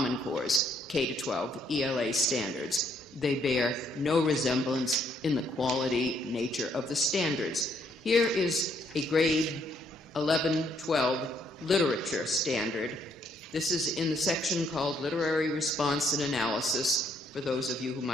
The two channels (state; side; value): normal; both; correlation 0.69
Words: Core's K-12 ELA standards. They bear no resemblance in the quality nature of the standards. Here is a grade 11-12 literature standard. This is in the section called Literary Response and Analysis, for those of you who